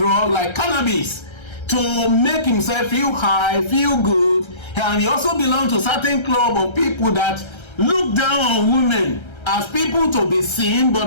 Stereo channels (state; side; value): late; right; 1.3 ms